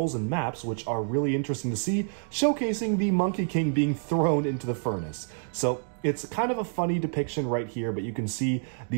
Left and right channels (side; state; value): left; silent; digital silence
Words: and maps, which are really interesting to see, showcasing the Monkey King being thrown into the furnace. So it's kind of a funny depiction right here, but you can see